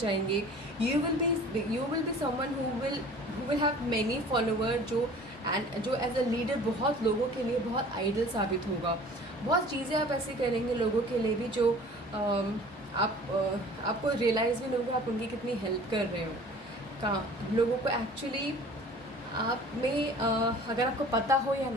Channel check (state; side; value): normal; both; correlation 0.46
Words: you will be someone who will have many follower, जो एज अ लीडर बहुत लोगों के लिए बहुत आइडल साबित होगा. बहुत चीज़ें आप ऐसे करेंगे लोगों के लिए भी जो आपको रियलाइज़ भी नहीं होगा आप उनकी कितनी हेल्प कर रहे हो. लोगों को एक्चुअली आप में अगर आपको पता हो या